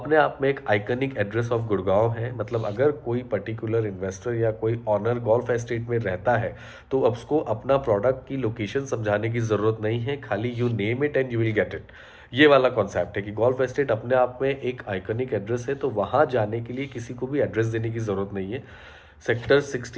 आप में एक आइकनिक एड्रेस ऑफ गुड़गांव है। मतलब अगर कोई पर्टिकुलर इन्वेस्टर या कोई ऑनर गोल्फ एस्टेट में रहता है तो अब उसको अपना प्रोडक्ट की लोकेशन समझाने की ज़रूरत नहीं है, खाली you name it and you will get it. ये वाला कॉन्सेप्ट है कि गोल्फ एस्टेट अपने आप में एक आइकॉनिक एड्रेस है, तो वहाँ जाने के लिए किसी को भी एड्रेस देने की ज़रूरत नहीं है। सेक्टर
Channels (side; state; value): both; identical; correlation 1.00